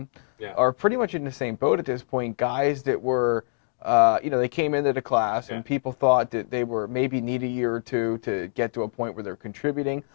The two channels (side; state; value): right; silent; digital silence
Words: are pretty much in the same boat at this point, guys that were, they came into the class, and people thought that they were maybe need a year or two to get to a point where they're contributing.